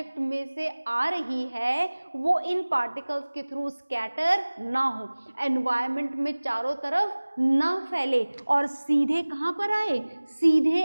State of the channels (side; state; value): both; inverted; correlation -1.00